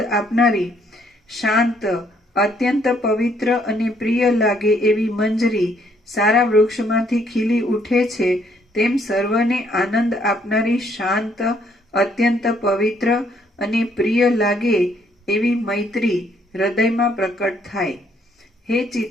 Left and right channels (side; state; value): both; normal; correlation 0.68